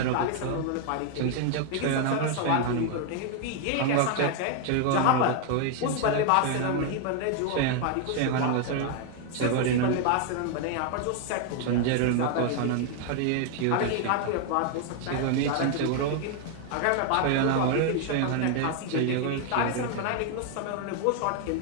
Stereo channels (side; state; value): both; different; correlation 0.00